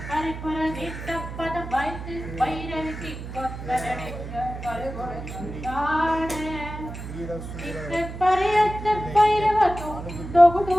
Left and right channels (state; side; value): noise; right; hum, 9 dB below the sound